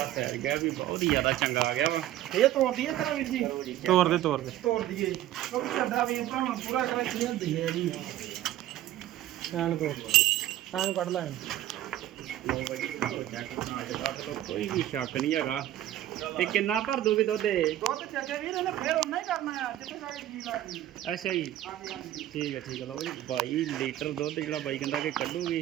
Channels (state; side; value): quieter; left; 13.4 dB